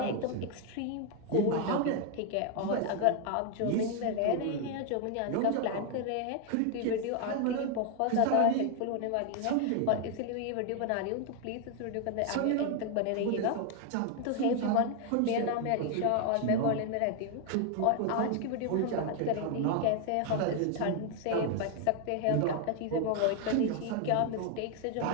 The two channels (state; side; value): different; both; correlation 0.00